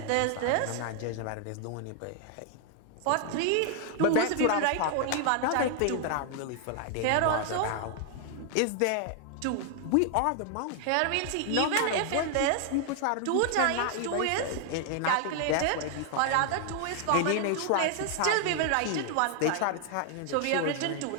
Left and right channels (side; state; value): both; different; correlation 0.00